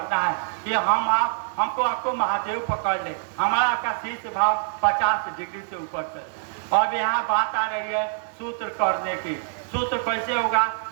है कि हमको आपको महादेव पकड़ ले, हमारा आपका शीर्ष भाव 50 डिग्री से ऊपर चल जाए। अब यहाँ बात आ रही है सूत्र करने की। सूत्र कैसे होगा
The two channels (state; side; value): silent; left; digital silence